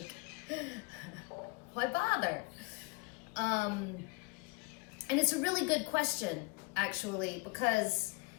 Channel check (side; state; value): right; quieter; 27.3 dB